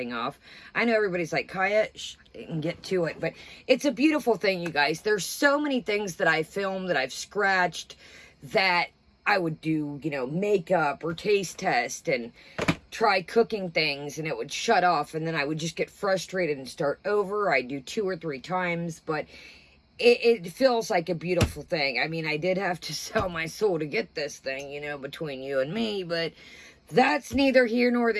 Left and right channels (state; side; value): identical; both; correlation 1.00